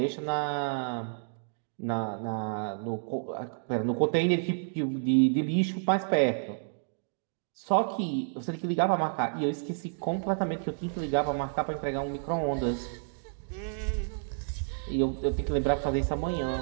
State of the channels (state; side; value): silent; left; digital silence